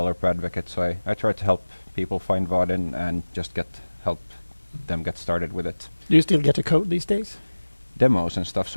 advocate, so I try to help people find Vaadin and just help them get started with it. Do you still get to code these days? Demos and stuff,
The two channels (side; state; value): both; inverted; correlation -1.00